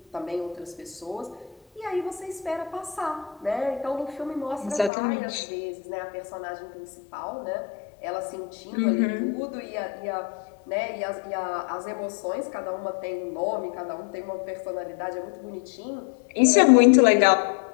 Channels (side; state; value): right; drops out; at 4.9 s